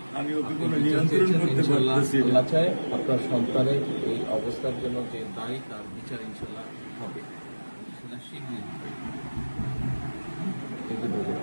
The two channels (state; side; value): inverted; both; correlation -1.00